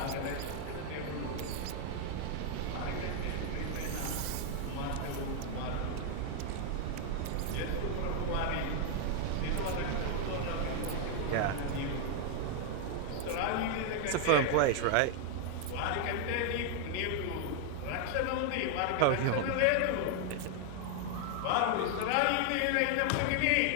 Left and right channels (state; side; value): different; both; correlation 0.00